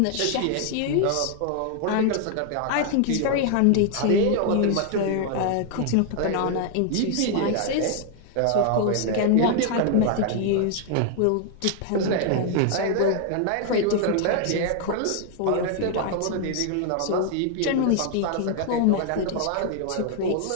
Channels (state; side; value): different; both; correlation 0.00